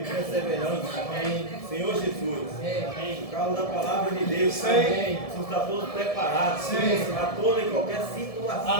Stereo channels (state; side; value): late; right; 1.7 ms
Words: perseverança. Senhor Jesus, por causa da palavra de Deus. Amém. Você está todos preparados para toda e qualquer situação.